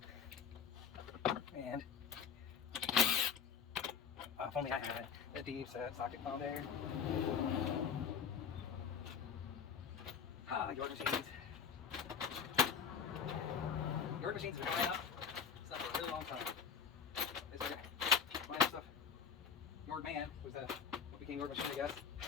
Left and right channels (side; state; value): right; quieter; 7.0 dB